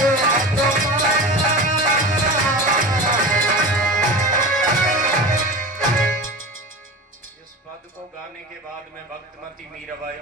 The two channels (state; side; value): normal; both; correlation 0.31